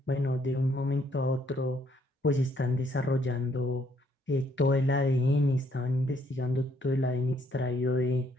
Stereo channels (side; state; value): both; normal; correlation 0.68